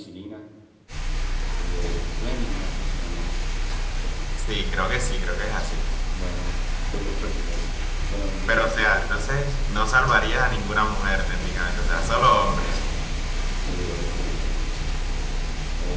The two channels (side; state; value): both; identical; correlation 1.00